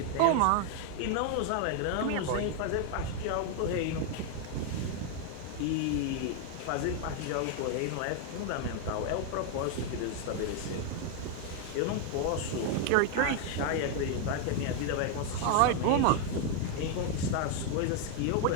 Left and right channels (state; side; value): different; both; correlation 0.01